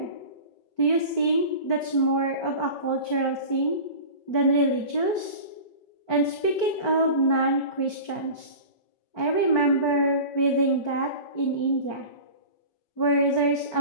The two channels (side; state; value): right; late; 4.5 ms